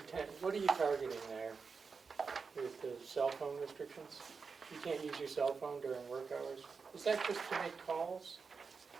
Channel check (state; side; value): quieter; left; 5.1 dB